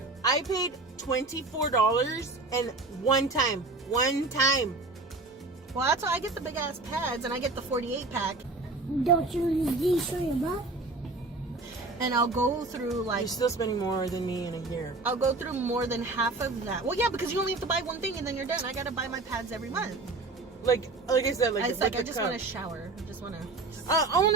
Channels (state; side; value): quieter; left; 3.4 dB